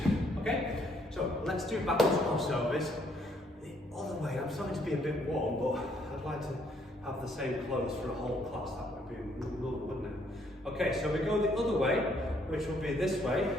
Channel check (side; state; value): both; normal; correlation 0.68